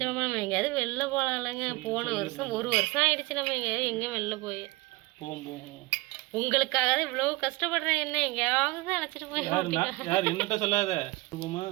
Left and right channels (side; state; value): left; quieter; 22.2 dB